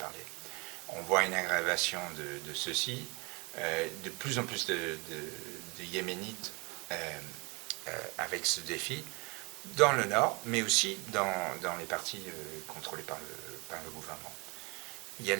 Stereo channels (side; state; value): left; quieter; 28.5 dB